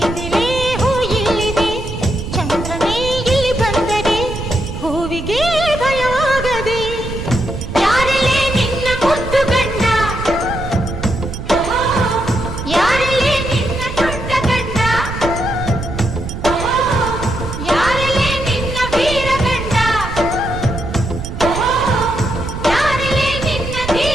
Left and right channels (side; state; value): right; noise; rumble, 7 dB below the sound